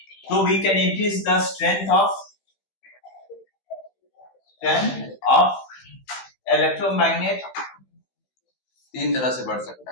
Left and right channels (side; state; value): right; late; 15 ms